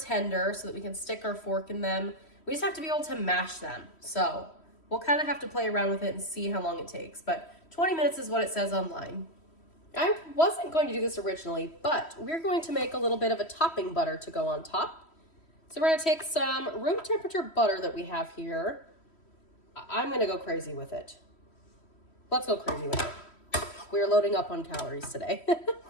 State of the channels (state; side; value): late; right; 3.1 ms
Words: so that we can stick our fork in them. We just have to be able to mash them. So we'll kind of have to play around with it and see how long it takes, but 20 minutes is what it says online. I wasn't going to do this originally, but we're going to make a little bit of a topping butter to go on top. So we're gonna take some room temperature butter that we have here. I'm gonna go crazy with it. Let's go crazy with it. We're loading up on calories today.